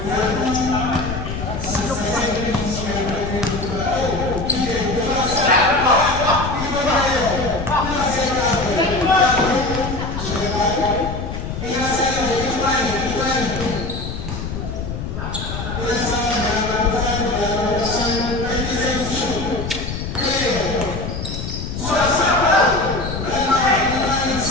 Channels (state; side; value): noise; left; rumble, 6 dB below the sound